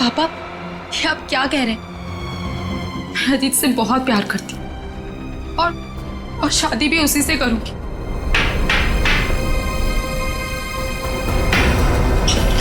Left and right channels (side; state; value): both; identical; correlation 1.00